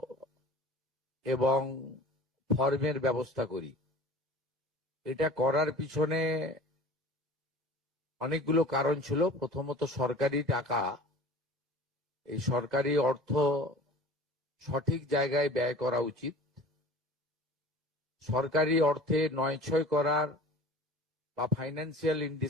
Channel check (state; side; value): normal; both; correlation 0.42